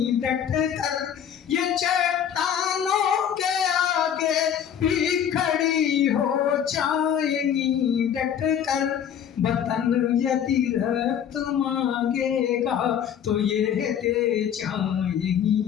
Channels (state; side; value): quieter; right; 8.9 dB